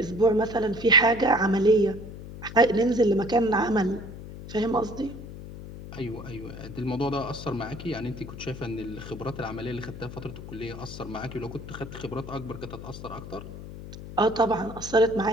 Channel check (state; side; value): noise; left; hum, 12 dB below the sound